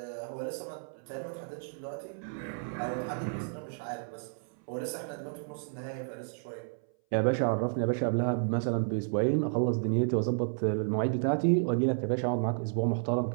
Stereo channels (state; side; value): silent; left; 57 dB below the other